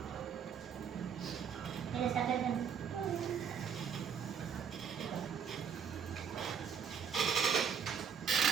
Ini sampai kan?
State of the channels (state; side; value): quieter; left; 7.3 dB